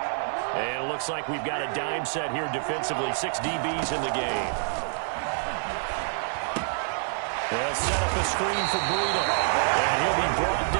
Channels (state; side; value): silent; left; 60 dB below the other